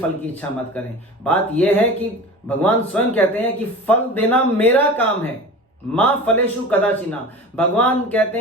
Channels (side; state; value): both; normal; correlation 0.35